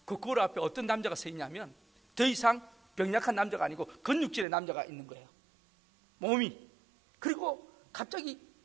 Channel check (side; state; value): left; drops out; at 4.5 s